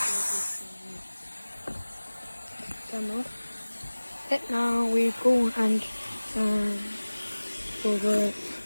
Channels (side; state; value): both; inverted; correlation -1.00